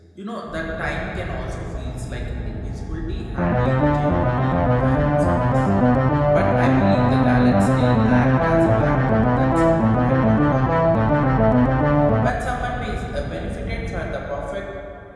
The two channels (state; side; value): identical; both; correlation 1.00